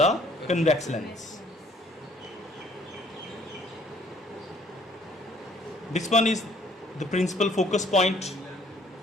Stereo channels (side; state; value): both; normal; correlation 0.60